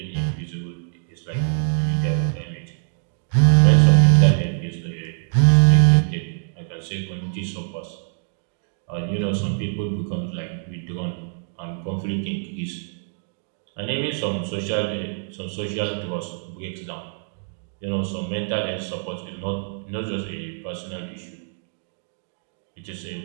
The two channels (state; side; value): silent; left; digital silence